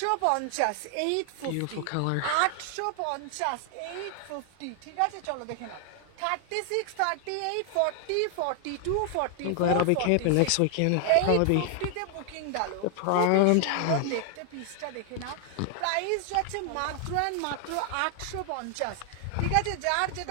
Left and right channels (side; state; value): both; different; correlation 0.00